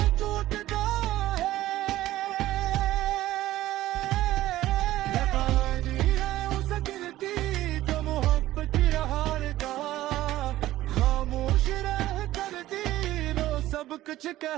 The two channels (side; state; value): left; quieter; 15.2 dB